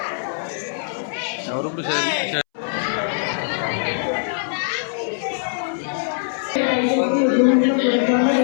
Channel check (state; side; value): silent; right; 64 dB below the other